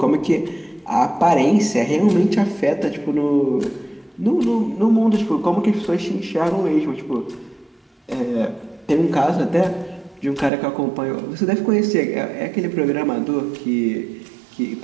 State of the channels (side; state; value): left; drops out; at 10.5 s